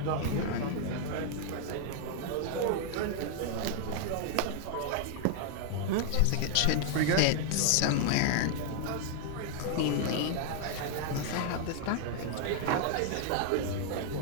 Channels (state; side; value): different; both; correlation 0.00